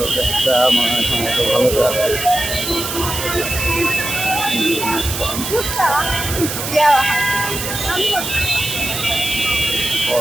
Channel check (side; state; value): right; noise; hiss, 5 dB below the sound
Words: মনে হয় টমেটো ভালো জাত।